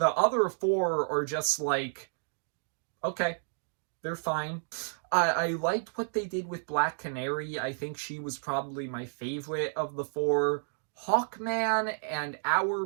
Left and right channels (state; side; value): silent; left; digital silence